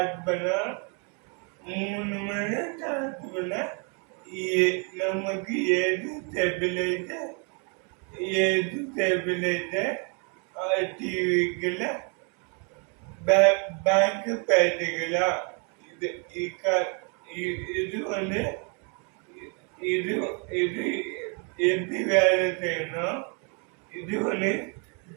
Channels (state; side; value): quieter; left; 36.3 dB